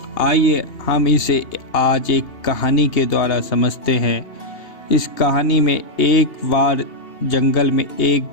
आइए हम इसे आज एक कहानी के द्वारा समझते हैं। इस कहानी में एक बार जंगल में एक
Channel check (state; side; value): late; right; 2.8 ms